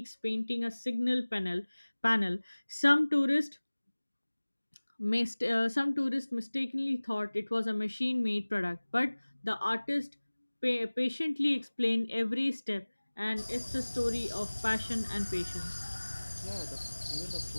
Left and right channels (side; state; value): both; inverted; correlation -1.00